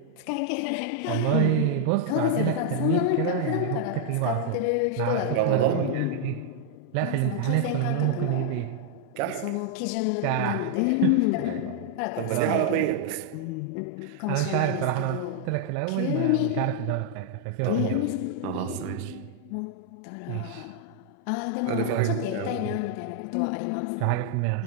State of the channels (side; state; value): both; different; correlation 0.00